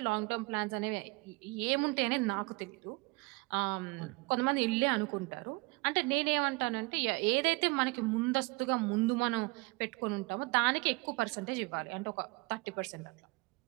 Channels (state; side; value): quieter; left; 26.4 dB